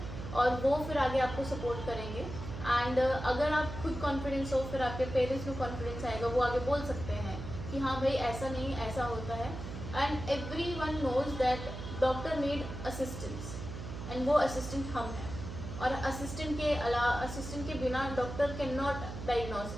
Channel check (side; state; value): right; noise; hum, 8 dB below the sound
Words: और वो फिर आगे आपको सपोर्ट करेंगे। एंड अगर आप खुद कॉन्फिडेंस हो फिर आपके पेरेंट्स में कॉन्फिडेंस आएगा, वो आगे बोल सकते हैं कि हाँ भाई ऐसा नहीं ऐसा होता है। And everyone knows that doctor need assistance and वो असिस्टेंट हम हैं, और असिस्टेंट के बिना doctor can not